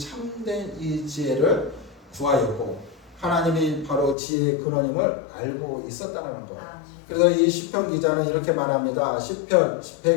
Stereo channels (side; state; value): right; drops out; at 4.2 s